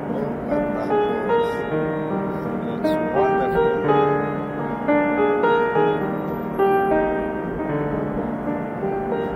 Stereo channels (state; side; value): identical; both; correlation 1.00